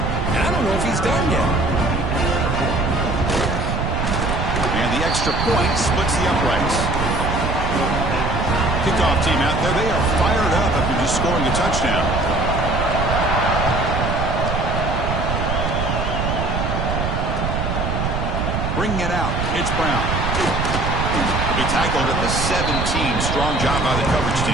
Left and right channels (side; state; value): right; noise; rumble, 1 dB below the sound